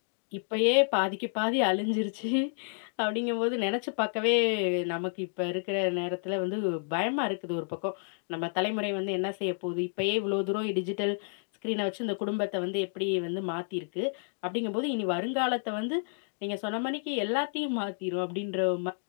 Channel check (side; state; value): right; silent; digital silence